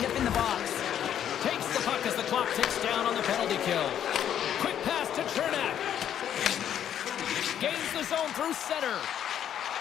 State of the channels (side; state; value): right; quieter; 9.9 dB